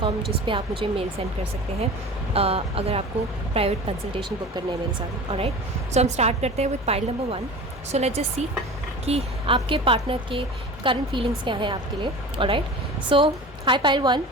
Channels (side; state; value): both; normal; correlation 0.35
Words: जिस पे आप मुझे मेल सेंड कर सकते हैं अगर आपको प्राइवेट कंसल्टेशन बुक करने है मेरे साथ. ऑलराइट, सो हम स्टार्ट करते हैं with pile number 1. So let's just see कि आपके पार्टनर के करंट फीलिंग्स क्या हैं आपके लिए. Alright, so high pile 1,